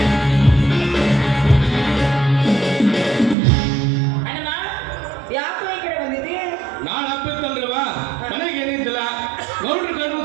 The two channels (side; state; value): left; drops out; at 3.4 s